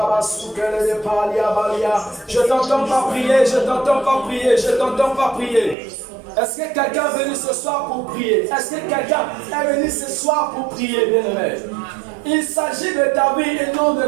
t'entends pas prier, je t'entends pas prier, je t'entends pas prier. Est-ce que quelqu'un est venu ce soir pour prier? Est-ce que quelqu'un est venu ce soir pour prier, bien-aimé? Il s'agit de ta vie et non de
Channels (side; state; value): left; drops out; at 5.8 s